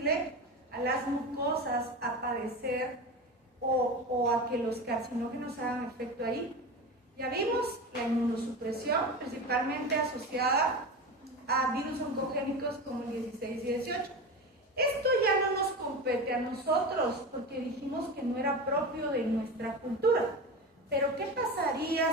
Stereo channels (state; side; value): normal; both; correlation 0.26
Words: a las mucosas a padecer o a que los carcinógenos hagan efecto ahí. Ya vimos la inmunosupresión, principalmente asociada a virus oncogénicos como el 16 y 18. Esto ya no nos compete a nosotros porque dijimos que no era propio de nuestra cultura. Pero ¿qué pasaría